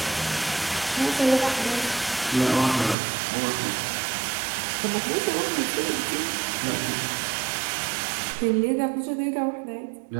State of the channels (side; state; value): left; drops out; at 3.0 s